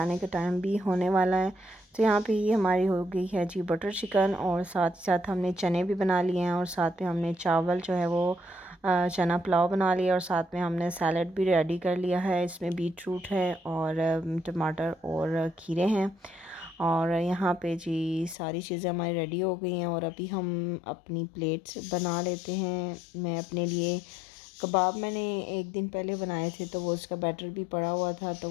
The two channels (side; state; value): right; drops out; at 18.4 s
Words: का टाइम भी होने वाला है। तो यहाँ पे ये हमारी हो गई है जी बटर चिकन, और साथ ही साथ हमने चने भी बना लिए हैं, और साथ में हमने चावल जो है वो चना पुलाव बना लिया, और साथ में हमने सैलड भी रेडी कर लिया है। इसमें बीट रूट है और टमाटर और खीरे हैं। और यहाँ पे जी सारी चीज़ें हमारी रेडी हो गई हैं, और अभी हम अपनी प्लेट्स बना लेते हैं। मैं अपने लिए कबाब मैंने एक दिन पहले बनाए थे, तो वो उसका बैटर भी पड़ा हुआ था, तो